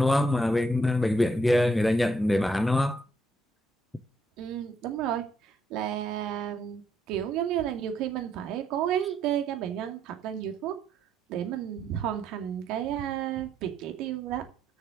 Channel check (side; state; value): both; normal; correlation 0.74